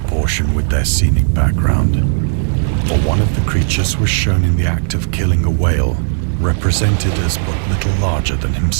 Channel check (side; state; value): left; silent; digital silence